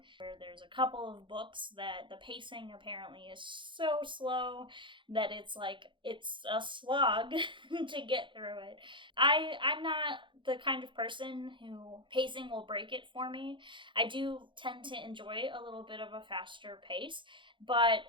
where there's a couple of books that the pacing apparently is so slow that it's a slog to get through it. I'm not the kind of person who pacing will break it for me. I do tend to enjoy a little bit of a faster pace, but,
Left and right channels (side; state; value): left; late; 0.24 ms